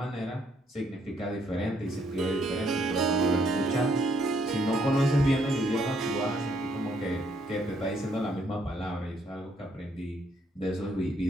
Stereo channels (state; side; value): normal; both; correlation 0.70